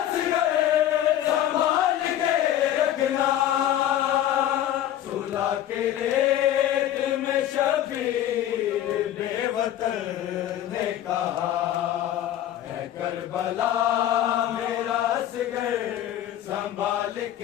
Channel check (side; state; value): right; quieter; 11.9 dB